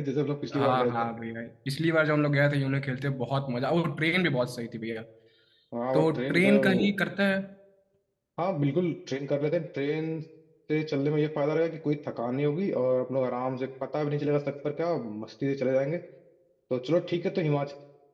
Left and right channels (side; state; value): both; identical; correlation 1.00